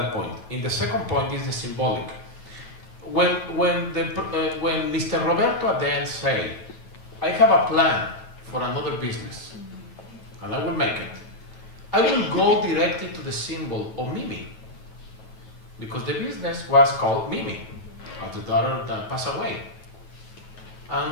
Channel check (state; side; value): late; right; 9.2 ms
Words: point. In the second point is the symbolic. When Mr. Roberto Aden said, I have a plan for another business, and I will make it, I will go directly to the symbol of Mimi, because the business was called Mimi, as the daughter that passed away.